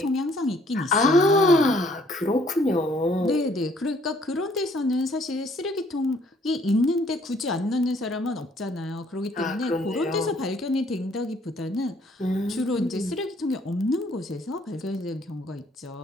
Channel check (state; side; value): normal; both; correlation 0.62